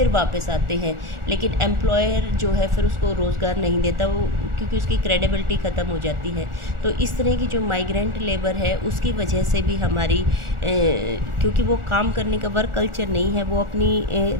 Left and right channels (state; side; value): late; left; 1.4 ms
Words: वापस आते हैं, लेकिन एम्प्लॉयर जो है फिर उसको रोज़गार नहीं देता, वो क्योंकि उसकी क्रेडिबिलिटी ख़त्म हो जाती है। तो इस तरह की जो माइग्रेंट लेबर है उसकी वजह से भी हमारी क्योंकि वो काम करने का वर्क कल्चर नहीं है, वो अपनी